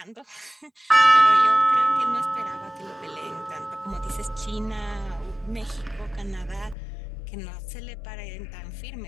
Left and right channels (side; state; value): right; drops out; at 6.8 s